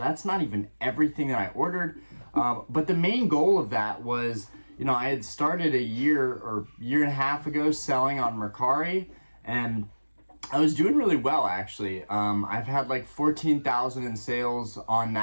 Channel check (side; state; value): both; inverted; correlation -1.00